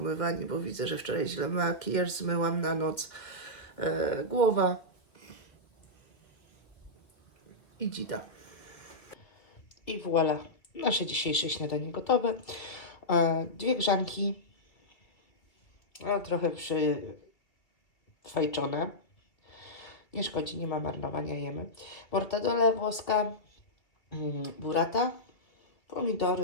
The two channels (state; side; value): late; right; 2.4 ms